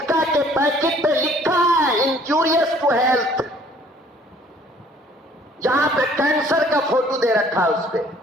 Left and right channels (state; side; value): normal; both; correlation 0.57